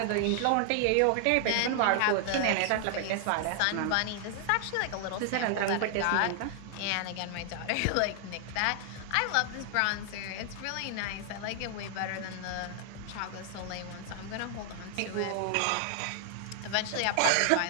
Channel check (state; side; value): different; both; correlation 0.00